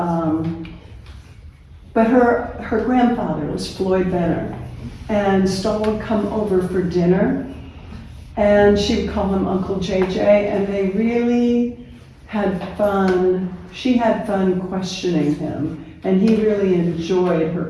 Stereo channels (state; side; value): identical; both; correlation 1.00